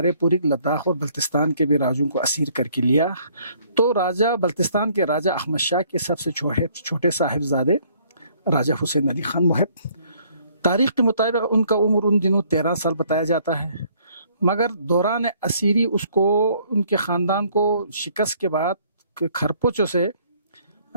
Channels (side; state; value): both; inverted; correlation -0.62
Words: پوری لداخ اور بلتستان کے بھی راجوں کو اسیر کر کے لیا. تو راجہ بلتستان کے راجہ احمد شاہ کے سب سے چھوٹے صاحبزادے راجہ حسین علی خان محب، تاریخ کے مطابق ان کا عمر ان دنوں 13 سال بتایا جاتا ہے، مگر دوران اسیری اس کو، ان کے خاندان کو شکست کے بعد کھرپوچوں سے